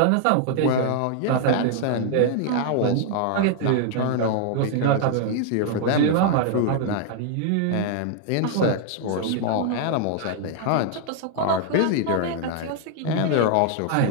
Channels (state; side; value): different; both; correlation 0.00